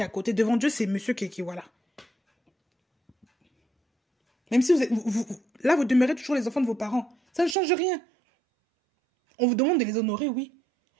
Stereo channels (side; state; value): left; drops out; at 7.6 s